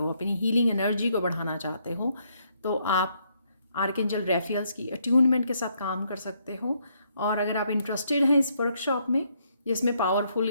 अपनी हीलिंग एनर्जी को बढ़ाना चाहते हो, तो आप आर्कएंजल रैफियल्स की अट्यूनमेंट के साथ काम कर सकते हो। और अगर आप इंटरेस्टेड हैं इस वर्कशॉप में, जिसमें पावरफुल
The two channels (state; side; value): inverted; both; correlation -0.73